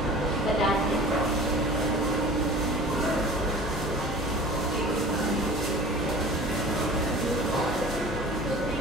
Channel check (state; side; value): normal; both; correlation 0.42